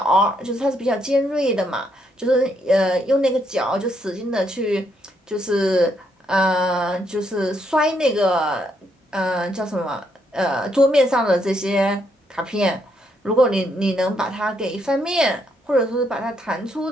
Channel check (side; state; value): both; normal; correlation 0.75